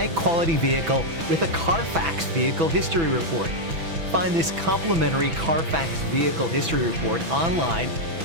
vehicle with a Carfax Vehicle History Report. Find this complimentary Carfax Vehicle History Report online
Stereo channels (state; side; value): late; left; 6.1 ms